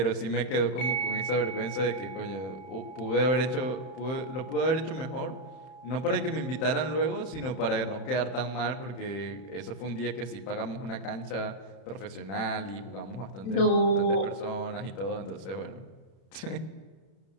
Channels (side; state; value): right; late; 31 ms